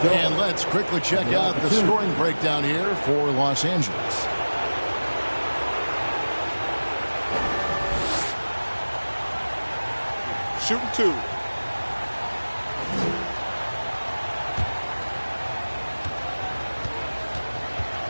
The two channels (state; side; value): inverted; both; correlation -1.00